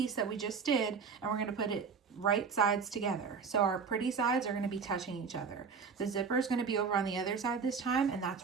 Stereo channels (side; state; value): left; quieter; 5.6 dB